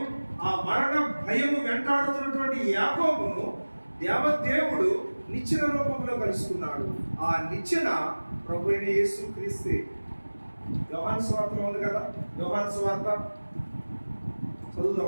ఆ మరణ భయము వెంటాడుతున్నటువంటి యాకోబును దేవదేవుడు నిచ్చెన రూపంలో కలుసుకున్నాడు. ఆ నిచ్చెన ప్రభు అయిన యేసుక్రీస్తే. యోహాను సువార్తలో ఉంది కదా, యోహాను సువార్త చదువుదాం.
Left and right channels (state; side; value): inverted; both; correlation -1.00